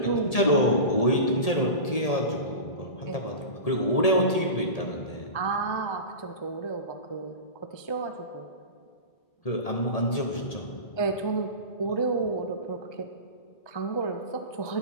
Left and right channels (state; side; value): late; right; 1.8 ms